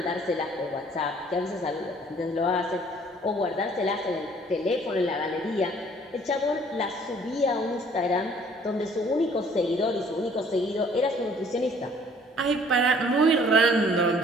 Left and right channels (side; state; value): both; normal; correlation 0.57